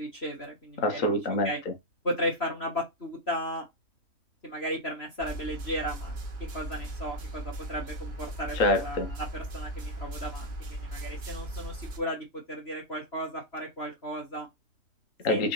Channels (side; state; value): right; late; 3.1 ms